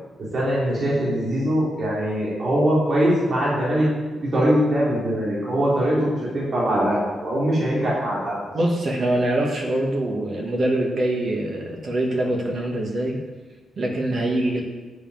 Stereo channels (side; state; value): both; normal; correlation 0.86